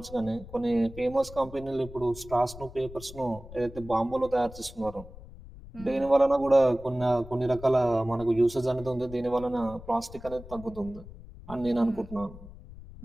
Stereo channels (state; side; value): noise; left; rumble, 16 dB below the sound